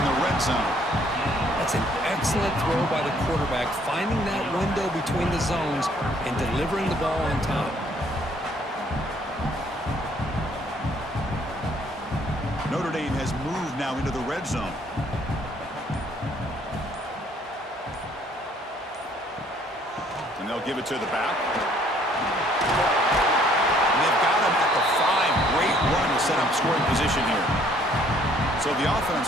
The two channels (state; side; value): normal; both; correlation 0.62